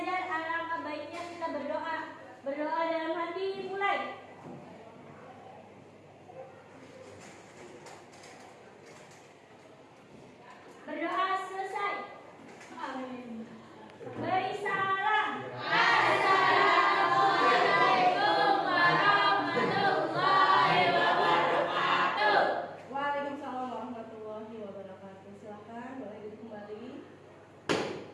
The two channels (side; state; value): both; identical; correlation 1.00